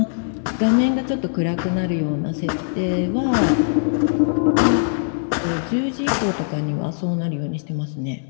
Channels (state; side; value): silent; right; digital silence